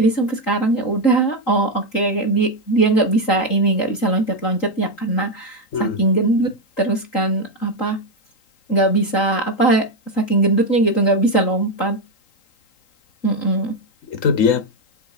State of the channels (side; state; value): right; late; 3.8 ms